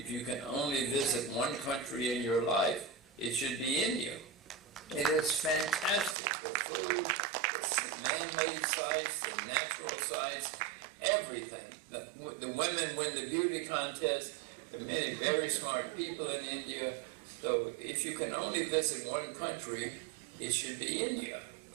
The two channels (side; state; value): left; drops out; at 6.2 s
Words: you can only visit one country in your life, it should be India. It is fantastic. The food, the man-made sites, the natural sites, everything. The women win the beauty contest. There are many very smart people in India. So if you can only visit one country, it should be India.